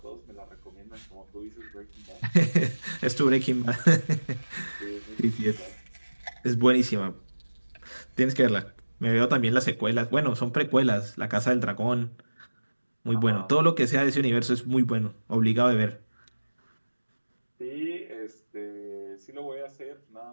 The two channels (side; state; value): both; inverted; correlation -1.00